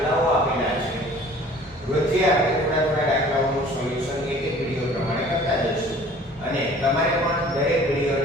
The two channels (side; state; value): both; normal; correlation 0.49